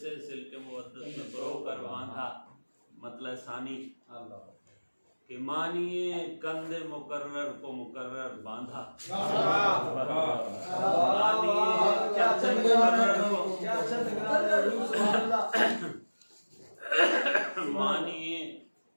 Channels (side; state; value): both; inverted; correlation -1.00